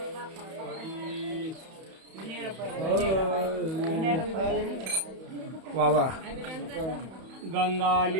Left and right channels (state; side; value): late; left; 31 ms